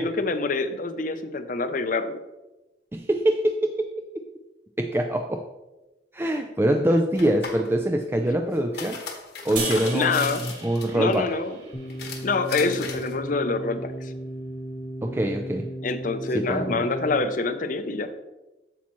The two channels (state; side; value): normal; both; correlation 0.55